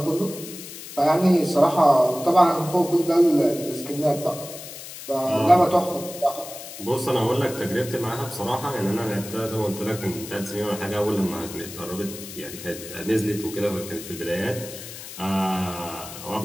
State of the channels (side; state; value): left; noise; hiss, 12 dB below the sound